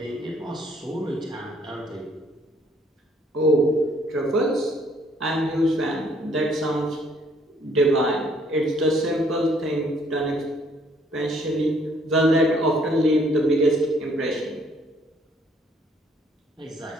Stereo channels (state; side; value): normal; both; correlation 0.64